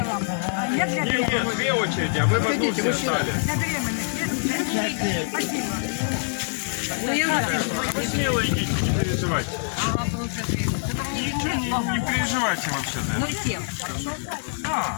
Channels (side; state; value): right; silent; 62 dB below the other